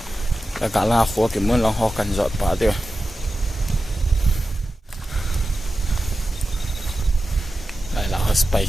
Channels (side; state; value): both; normal; correlation 0.92